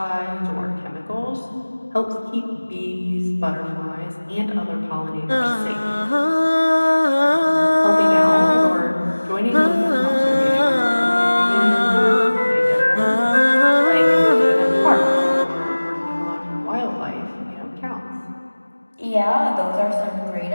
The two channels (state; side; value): inverted; both; correlation -1.00